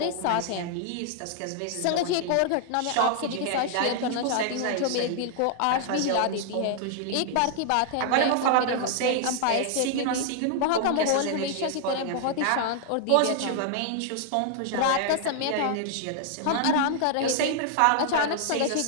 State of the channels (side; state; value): both; different; correlation 0.00